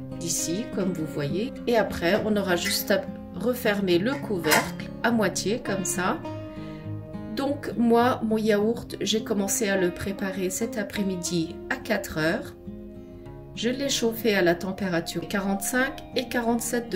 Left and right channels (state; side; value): identical; both; correlation 1.00